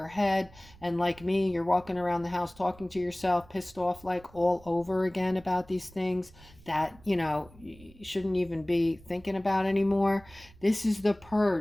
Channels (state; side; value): noise; right; rumble, 23 dB below the sound